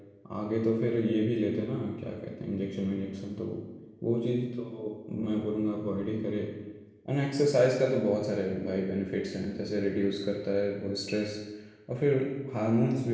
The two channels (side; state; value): both; identical; correlation 1.00